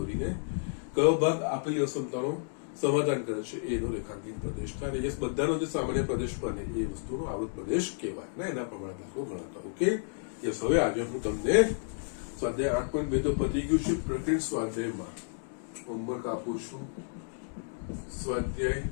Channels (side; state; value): right; silent; digital silence